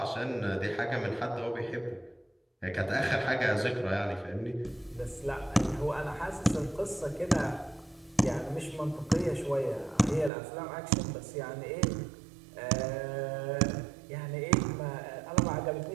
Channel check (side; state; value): left; drops out; at 10.3 s